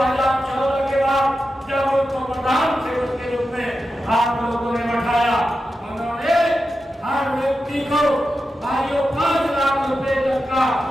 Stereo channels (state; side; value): normal; both; correlation 0.90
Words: के बाद जब उनको प्रधान सेवक के रूप में आप लोगों ने बैठाया, उन्होंने हर व्यक्ति को 5 लाख रुपए तक का